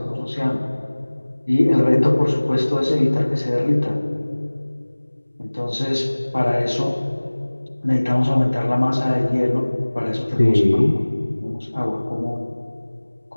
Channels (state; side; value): inverted; both; correlation -1.00